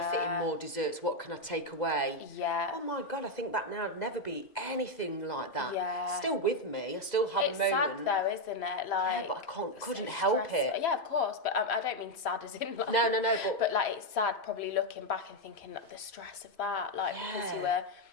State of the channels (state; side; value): late; right; 2.0 ms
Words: fit in more desserts, what can I take away. Yeah. Oh my God, I think that now would never be anything like that. Yeah. Still with me, I still have It's a moment. sad though, isn't it? Like, but I couldn't help it. Yeah, of course, but I don't mean sad as in like... No, but like, it's sad probably looking back and thinking like, the stress of that, like, because you were...